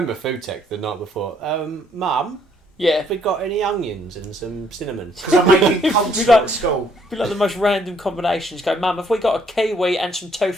food tech the night before? Mum, yeah. have we got any onions and some cinnamon? Because I'm making culture at school. Be like the most random combinations. Go, Mum, have we got a kiwi and some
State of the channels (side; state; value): both; normal; correlation 0.67